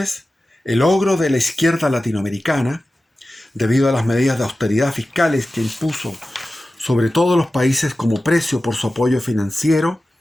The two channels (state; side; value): normal; both; correlation 0.94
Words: el ogro de la izquierda latinoamericana, debido a las medidas de austeridad fiscales que impuso sobre todos los países como precio por su apoyo financiero